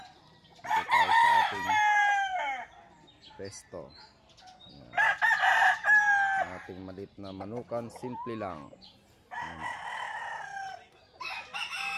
Ito tayo sa ating pesto. Yan. Ating malit na manukan, simple lang.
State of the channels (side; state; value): both; identical; correlation 1.00